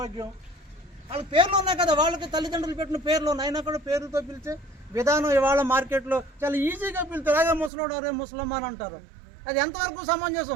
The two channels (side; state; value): left; drops out; at 7.7 s